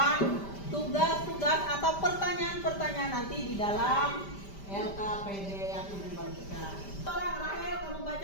tugas-tugas atau pertanyaan-pertanyaan nanti di dalam LKPD yang Ibu bagikan. Rahel, kamu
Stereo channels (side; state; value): right; late; 5.1 ms